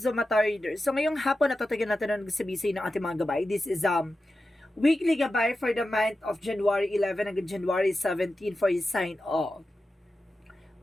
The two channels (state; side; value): normal; both; correlation 0.92